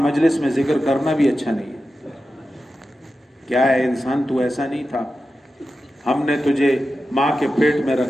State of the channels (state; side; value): normal; both; correlation 0.92